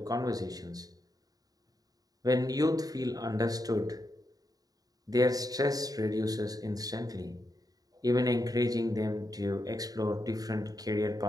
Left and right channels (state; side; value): late; left; 0.18 ms